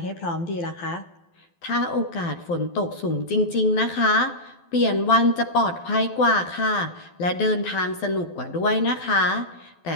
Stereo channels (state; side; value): late; right; 12 ms